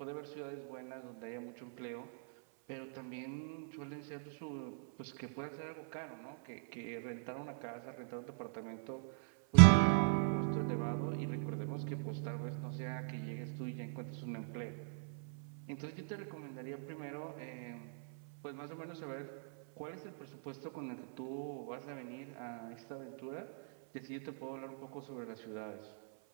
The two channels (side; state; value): left; silent; 51 dB below the other